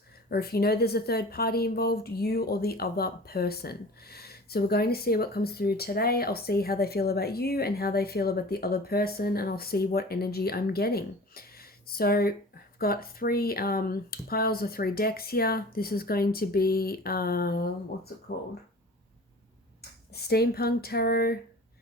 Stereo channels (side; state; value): both; normal; correlation 0.41